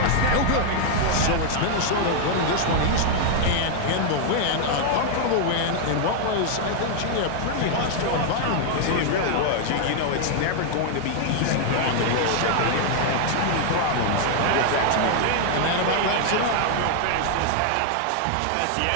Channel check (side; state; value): both; different; correlation 0.00